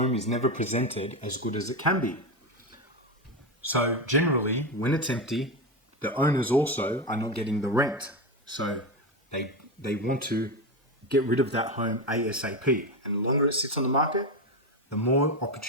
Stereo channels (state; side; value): normal; both; correlation 0.14